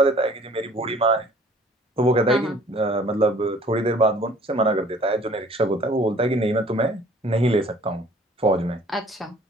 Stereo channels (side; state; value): both; normal; correlation 0.54